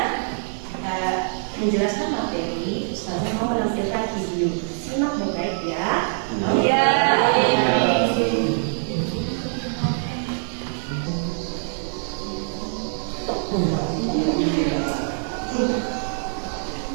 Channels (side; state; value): left; silent; digital silence